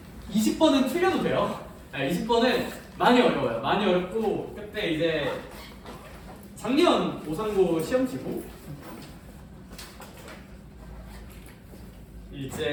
20번은 틀려도 돼요. 20번은 많이 어려워요. 많이 어렵고 그때 이제 작년 오상고 시험치고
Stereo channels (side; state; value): both; identical; correlation 1.00